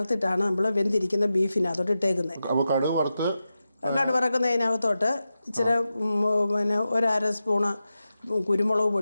നമ്മൾ വെന്തിരിക്കുന്ന ബീഫിനകത്തോട്ട് ഇട്ടേക്കുന്നത്. അപ്പോൾ കടു വറുക്കുന്നതിനകത്തോട്ട് ഇച്ചിരി പിന്നെ 1/2 സ്പൂണ് കുരുമുളക്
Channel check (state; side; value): inverted; both; correlation -0.91